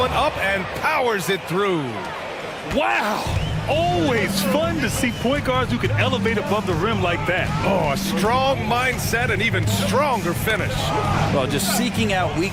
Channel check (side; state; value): both; identical; correlation 1.00